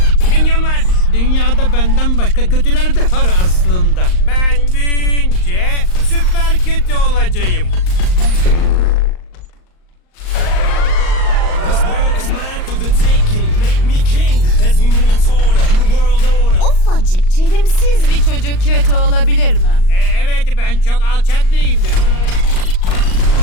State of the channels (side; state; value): right; late; 38 ms